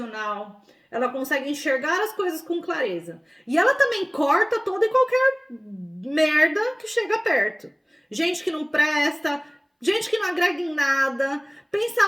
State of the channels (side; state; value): both; identical; correlation 1.00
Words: ela consegue enxergar as coisas com clareza. E ela também corta toda e qualquer merda que chega perto. Gente que não presta, gente que não agrega em nada,